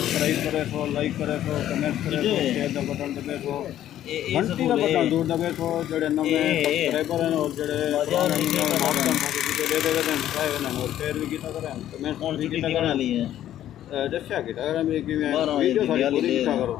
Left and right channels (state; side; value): quieter; right; 12.0 dB